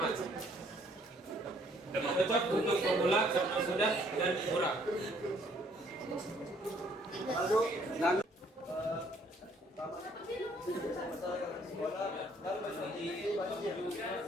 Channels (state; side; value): normal; both; correlation 0.63